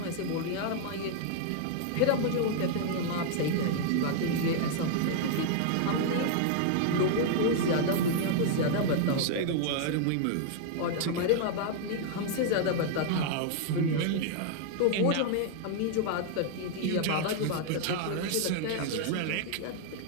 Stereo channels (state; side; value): different; both; correlation 0.00